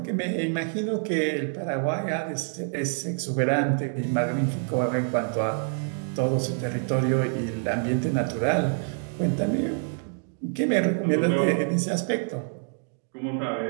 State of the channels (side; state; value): left; silent; 56 dB below the other